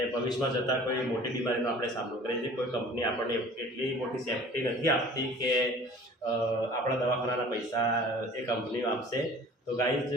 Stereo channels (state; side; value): normal; both; correlation 0.46